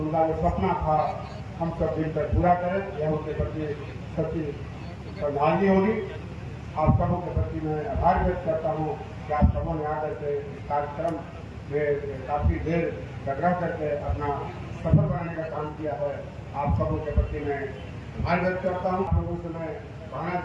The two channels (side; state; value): both; identical; correlation 1.00